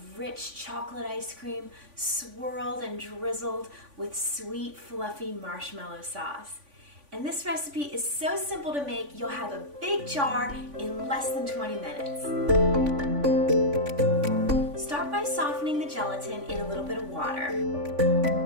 rich chocolate ice cream swirled and drizzled with sweet, fluffy marshmallow sauce. And this recipe is so simple to make, you'll have a big jar in less than 20 minutes. Start by softening the gelatin in a little bit of water.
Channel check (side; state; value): left; late; 3.5 ms